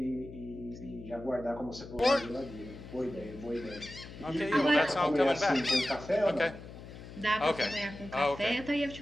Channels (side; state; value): left; noise; hum, 14 dB below the sound